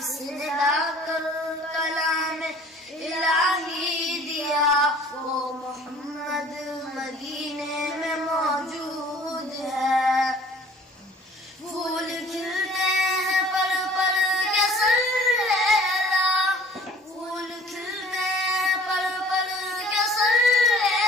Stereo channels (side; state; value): both; normal; correlation 0.51